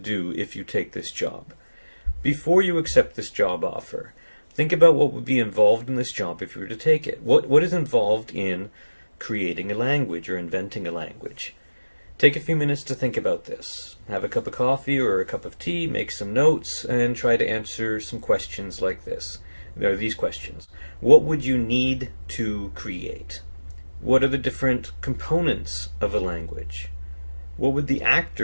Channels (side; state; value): both; inverted; correlation -1.00